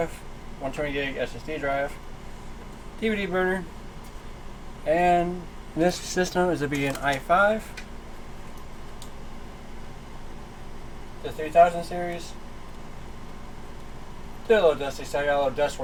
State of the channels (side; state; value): both; identical; correlation 1.00